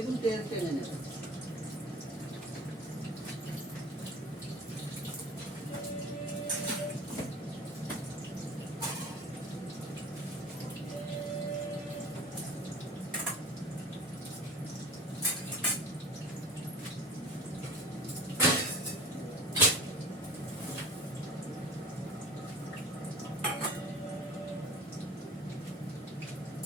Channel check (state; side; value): normal; both; correlation 0.40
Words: তেল টেনে নেবে।